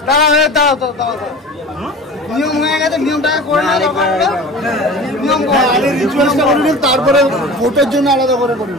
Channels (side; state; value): both; normal; correlation 0.37